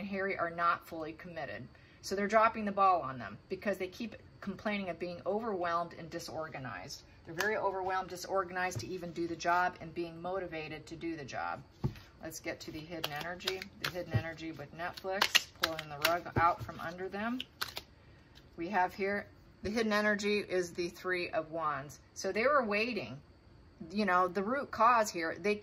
Harry are not fully committed. So they're dropping the ball on them because they keep complaining of being overwhelmed and disorganized. They're very overwhelmed, disorganized to even do the job and being motivated to do the job. Let's get to the hidden energy. The hidden energy with Netflix, pulling the rug out from under them. We have here, the hidden energy is the Three of Wands. So they were waiting. You know, the root cause here, they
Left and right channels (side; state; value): both; identical; correlation 1.00